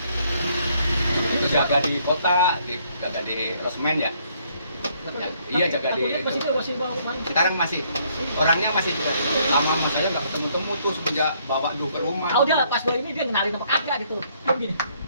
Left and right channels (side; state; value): both; inverted; correlation -0.68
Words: Itu jaga di kota, jaga di Rosmen ya. Ya, iya jaga di itu. Masih bawa main. Sekarang masih orangnya masih juga lama sama saya nggak ketemu-temu tuh semenjak bawa dulu ke rumah. Tahu dia pas ini dia kenalin apa kagak gitu. Kayak gini.